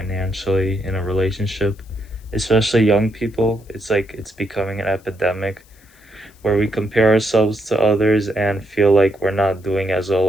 in a relationship, especially young people. It's like it's becoming an epidemic where we compare ourselves to others and feel like we're not doing as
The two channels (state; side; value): noise; left; hiss, 30 dB below the sound